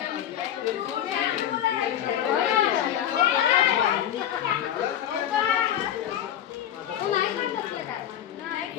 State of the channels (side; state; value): right; quieter; 10.7 dB